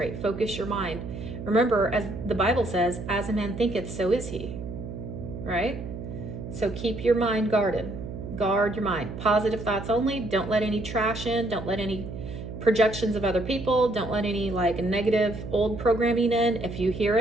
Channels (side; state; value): right; noise; hum, 9 dB below the sound